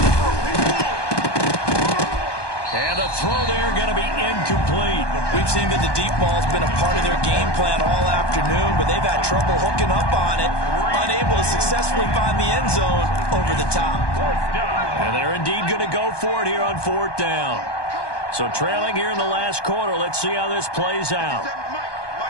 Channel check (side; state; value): right; late; 1.2 ms